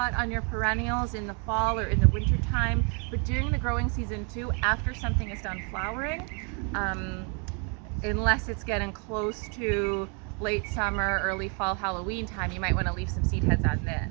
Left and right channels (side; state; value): left; quieter; 35.8 dB